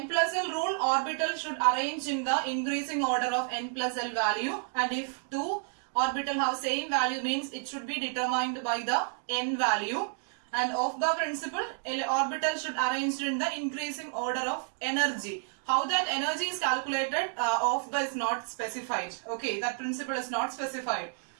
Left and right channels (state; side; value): silent; left; 57 dB below the other